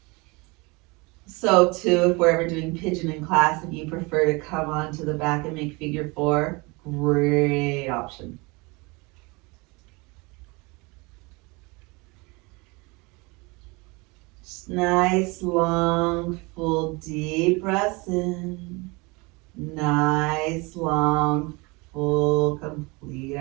So too, if we're ever doing pigeon in class, if you prefer to come onto the back and make figure 4, great option. Just nice, long, full, deep breaths in. Nice, long, full, complete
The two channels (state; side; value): quieter; left; 26.5 dB